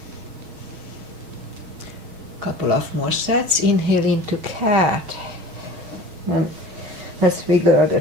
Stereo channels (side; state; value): left; late; 6.3 ms